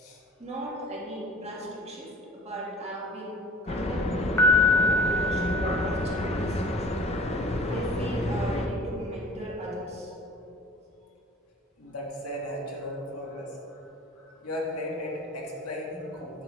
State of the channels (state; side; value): normal; both; correlation 0.45